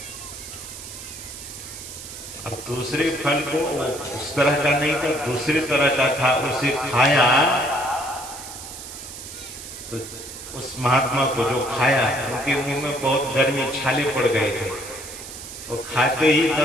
अब दूसरे फल को, उस तरह का नहीं था, दूसरे तरह का था, उसे खाया तो उस महात्मा को जो खाया, उनके मुंह में बहुत गर्मी, छाले पड़ गए थे। वो खाते ही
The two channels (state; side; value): noise; right; hiss, 12 dB below the sound